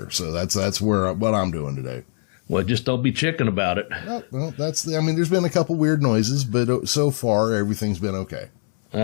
So that's what I'm doing today. Well, just don't be chicken about it. Well, there's been a couple weird noises, but so far everything's been okay.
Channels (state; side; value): silent; right; 64 dB below the other